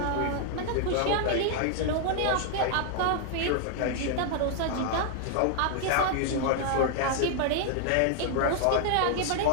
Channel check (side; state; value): both; different; correlation 0.00